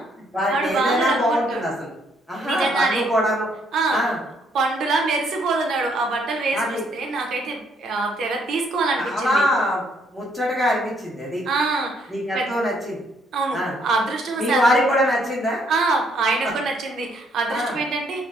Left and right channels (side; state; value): both; normal; correlation 0.69